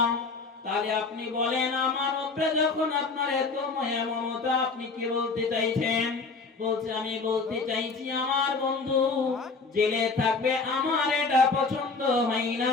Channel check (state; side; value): quieter; right; 4.2 dB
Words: তাহলে আপনি বলেন আমার উপরে যখন আপনার এত মায়া মমতা, আপনি কি বলতে চাইছেন? বলছে আমি বলতে চাইছি আমার বন্ধু জেলে থাকবে, আমার এটা পছন্দ হয়